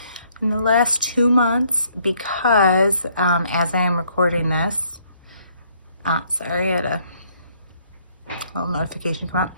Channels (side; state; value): both; inverted; correlation -0.67